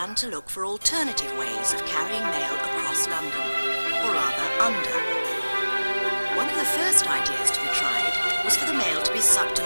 to look for alternative ways of carrying mail across London, or rather under. One of the first ideas to be tried was for the mail to be sucked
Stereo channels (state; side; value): inverted; both; correlation -1.00